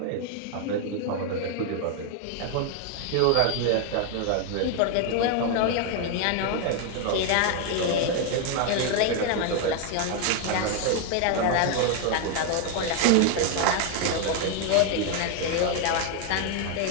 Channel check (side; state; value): both; different; correlation 0.01